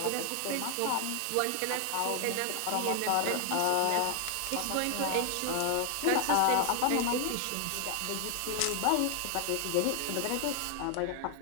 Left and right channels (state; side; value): different; both; correlation 0.00